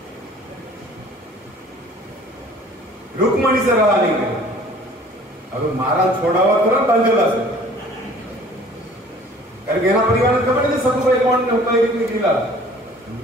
रुक्मणी से रहा नहीं गया। अब महाराज छोड़ा हुआ तो ना बांधेला से करके ना परिवार ने खबर नहीं सखुबाई कौन ने उपाय कितनी गिला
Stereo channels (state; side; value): normal; both; correlation 0.51